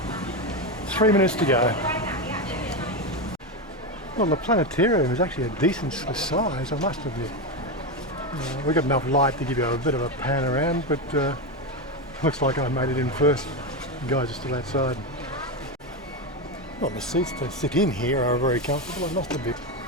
3 minutes to go. Well, the planetarium is actually a decent size, I must admit. We've got enough light to give you a bit of a pan around, but looks like I made it in first. The guys are still outside. Well, the seats to sit in here are very comfortable, I must admit.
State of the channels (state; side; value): normal; both; correlation 0.13